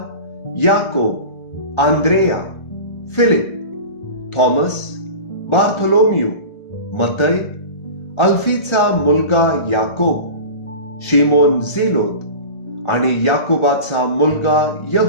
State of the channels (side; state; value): right; late; 1.3 ms